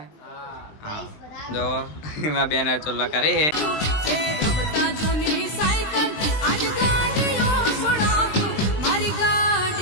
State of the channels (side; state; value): right; late; 20 ms